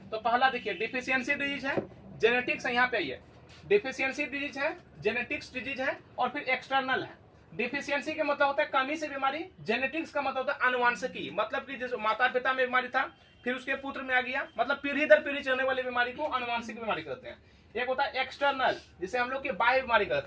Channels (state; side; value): identical; both; correlation 1.00